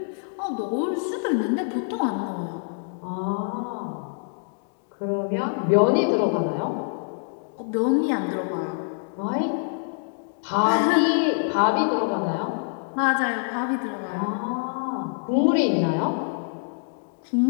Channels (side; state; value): right; silent; 61 dB below the other